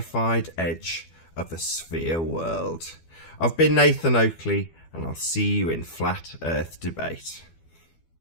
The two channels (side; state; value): right; late; 12 ms